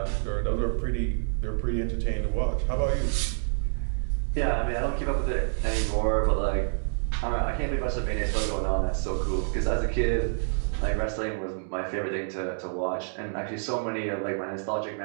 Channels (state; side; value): silent; left; digital silence